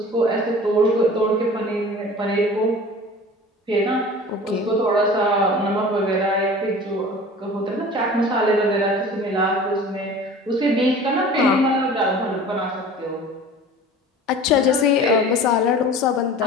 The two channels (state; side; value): normal; both; correlation 0.41